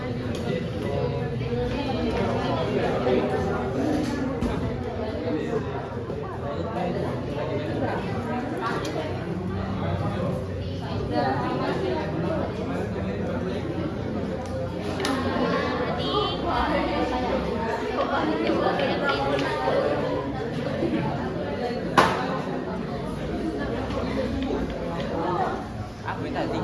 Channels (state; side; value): identical; both; correlation 1.00